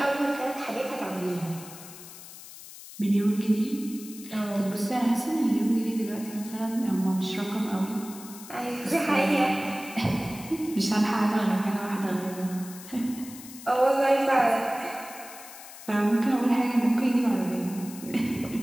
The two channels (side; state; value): left; noise; hiss, 16 dB below the sound